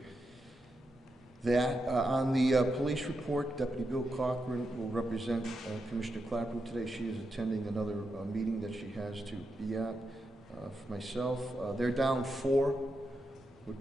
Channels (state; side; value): normal; both; correlation 0.86